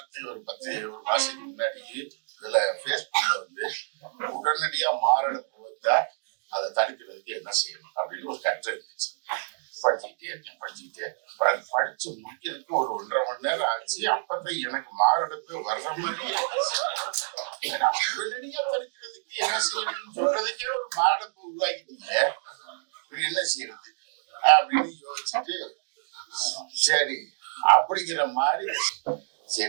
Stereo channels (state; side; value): silent; left; digital silence